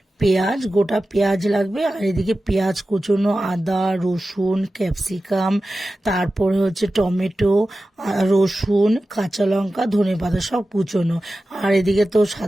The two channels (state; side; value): normal; both; correlation 0.94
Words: পেঁয়াজ, গোটা পেঁয়াজ লাগবে, আর এদিকে পেঁয়াজ কুচোনো, আদা, রসুন, ক্যাপসিকাম, তারপরে হচ্ছে টমেটো, রসুন, কাঁচা লঙ্কা, ধনেপাতা সব কুচোনো। আর এদিকে তো